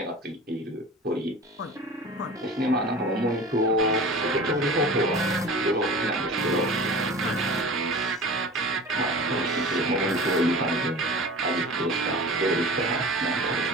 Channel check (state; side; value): normal; both; correlation 0.38